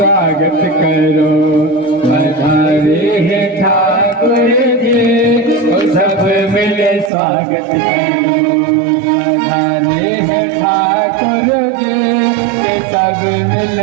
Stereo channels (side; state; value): left; drops out; at 7.1 s